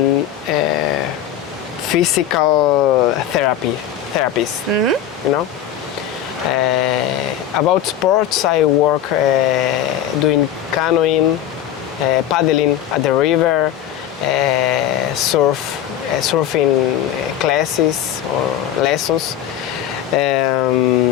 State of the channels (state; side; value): quieter; right; 10.4 dB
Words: physical therapies. You know. About sports, I work doing canoeing, paddling at the river, surfing classes or lessons.